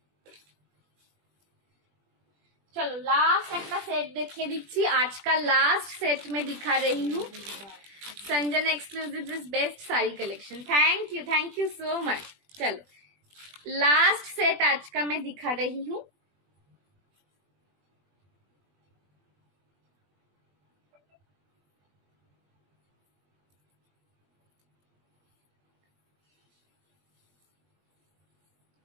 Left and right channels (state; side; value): late; left; 20 ms